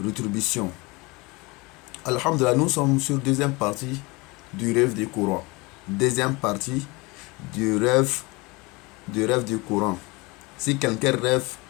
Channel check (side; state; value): right; quieter; 25.0 dB